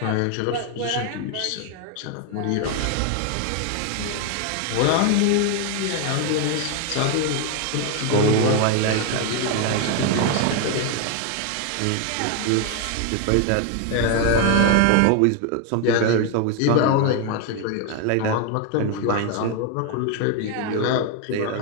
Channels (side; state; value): both; different; correlation 0.01